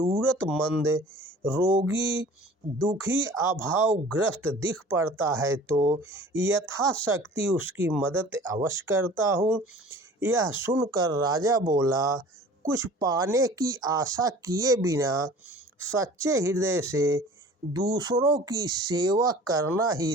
रोगी, दुखी, अभावग्रस्त दिख पड़ता है तो यथाशक्ति उसकी मदद अवश्य करता हूँ। यह सुनकर राजा बोला, कुछ पाने की आशा किए बिना सच्चे हृदय से दूसरों की सेवा करना ही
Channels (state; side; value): normal; both; correlation 0.45